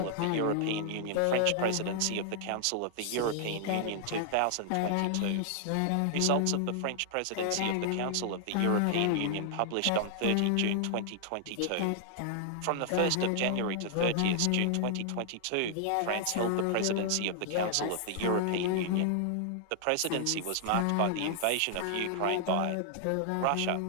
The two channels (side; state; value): both; different; correlation 0.00